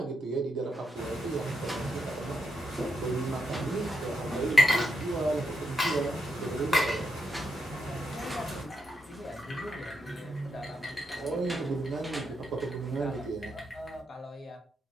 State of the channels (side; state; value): both; normal; correlation 0.82